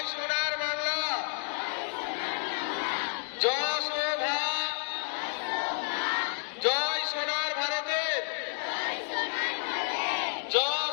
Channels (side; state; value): right; silent; 57 dB below the other